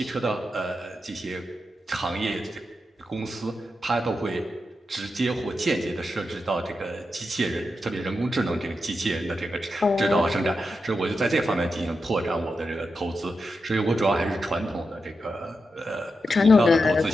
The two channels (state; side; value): normal; both; correlation 0.88